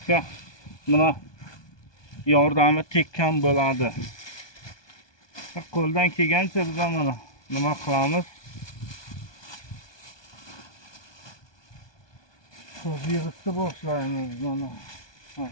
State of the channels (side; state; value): right; late; 1.2 ms